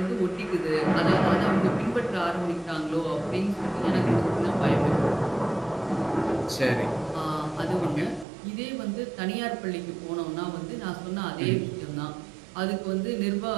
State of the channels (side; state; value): left; drops out; at 8.2 s